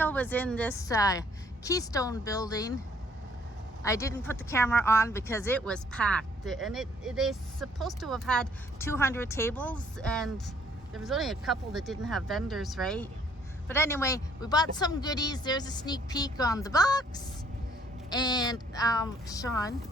was in this Keystone building. I didn't put the camera on because it was packed, and they're supposed to have had 200 tables, and there was only a couple that didn't have vendors, right? But anyway, we bought some goodies. There's a sneak peek on the box. And Sean,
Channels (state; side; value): normal; both; correlation 0.63